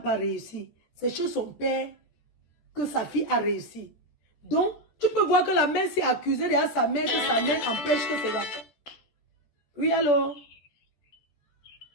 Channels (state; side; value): late; right; 14 ms